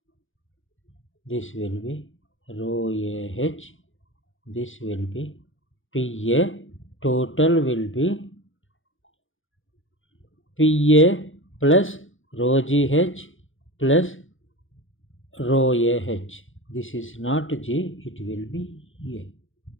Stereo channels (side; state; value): right; late; 0.58 ms